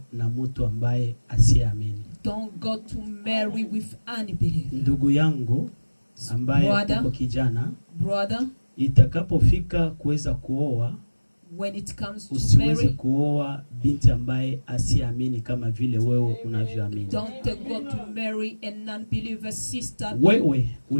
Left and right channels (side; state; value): both; inverted; correlation -1.00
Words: na mtu ambaye asiamini. don't go to marry with unbeliever. Ndugu yangu ambaye Brother. uko kijana, Brother, itakapofika kuweza kuoa, when it comes to usiweze marry, kuoa binti ambaye asiamini kama vile wewe unavyoamini. don't go to marry a non-believer sister. Wewe